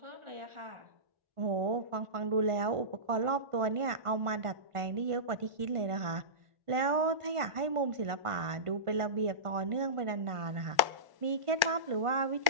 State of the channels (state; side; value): late; left; 1.1 ms